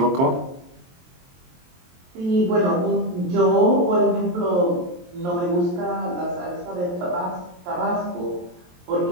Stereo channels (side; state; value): left; late; 23 ms